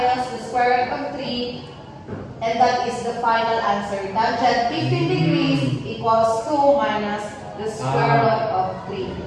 the square root And that is the final answer. Tangent 15 degrees equals 2 minus the square root of 3.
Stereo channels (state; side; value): identical; both; correlation 1.00